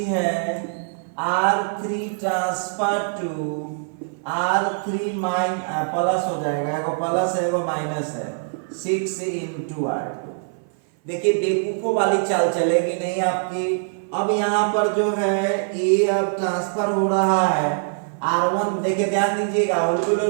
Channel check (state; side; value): silent; left; 57 dB below the other